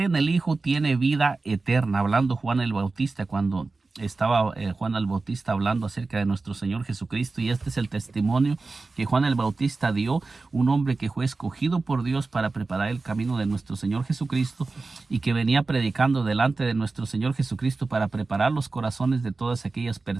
en el Hijo tiene vida eterna, hablando Juan el Bautista cuando estaba Juan el Bautista hablando acerca de nuestro Señor Jesucristo, y este es el testimonio que Juan el Bautista dio, un hombre que fue escogido por Dios para preparar el camino de nuestro Señor Jesucristo y que venía predicando delante de nuestro Señor Jesucristo para preparar los corazones de todas aquellas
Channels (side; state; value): left; quieter; 3.7 dB